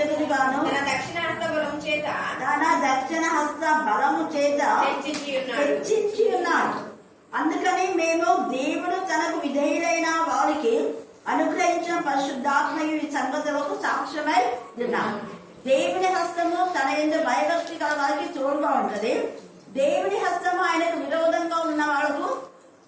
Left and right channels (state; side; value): identical; both; correlation 1.00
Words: తన దక్షిణ హస్త బలము చేత హెచ్చించి ఉన్నాడు. అందుకని మేము దేవుడు తనకు విధేయులైన వారికి అనుగ్రహించిన పరిశుద్ధాత్మయు ఈ సంగతులకు సాక్ష్యమై ఉన్నాం. దేవుని హస్తము తన యందు భయభక్తి గల వారికి తోడుగా ఉంటది. దేవుని హస్తము ఆయనకు విరోధంగా ఉన్న వాళ్ళకు